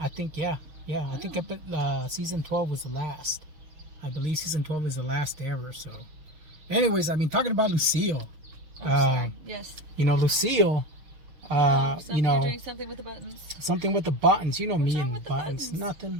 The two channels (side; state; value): left; late; 6.6 ms